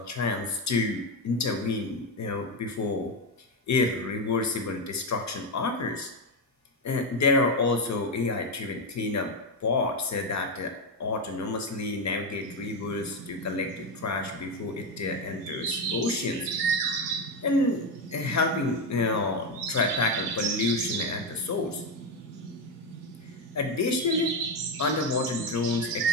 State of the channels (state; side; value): normal; both; correlation 0.09